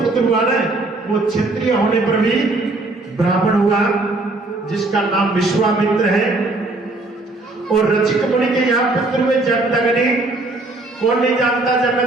हुआ ना, वो क्षत्रिय होने पर भी ब्राह्मण हुआ जिसका नाम विश्वामित्र है। और रचिक मुनि के यहाँ पुत्र हुए जमदग्नि। कौन नहीं जानता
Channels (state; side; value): quieter; left; 3.0 dB